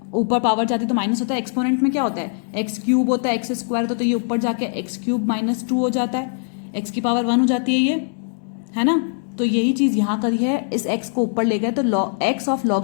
ऊपर पावर जाती तो माइनस होता है, एक्सपोनेंट में क्या होता है x क्यूब होता है, x स्क्वायर होता है, तो ये ऊपर जाके x क्यूब माइनस 2 हो जाता है, x की पावर 1 हो जाती है ये, है ना। तो यही चीज यहाँ करी है, इस x को ऊपर ले गए तो x of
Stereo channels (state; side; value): silent; right; 65 dB below the other